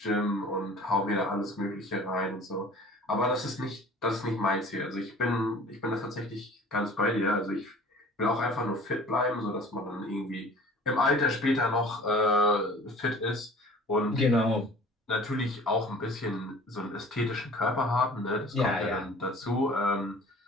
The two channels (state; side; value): normal; both; correlation 0.46